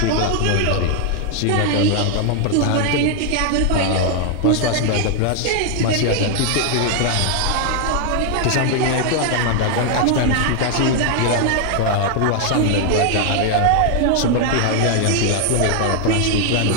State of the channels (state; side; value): different; both; correlation 0.00